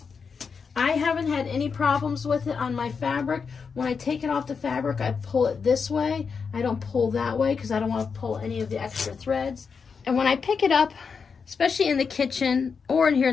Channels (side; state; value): right; quieter; 5.7 dB